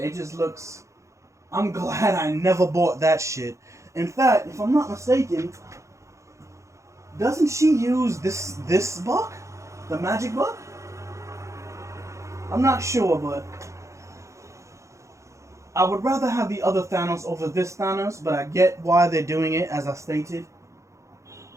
just looks. I'm glad I never bought that shit. In fact, if I'm not mistaken, doesn't she use this buck, the magic buck? I'm not sure, but I would rather have the other Thanos over this Thanos, but I get why they're doing it, as I stated.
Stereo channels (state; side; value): late; left; 0.15 ms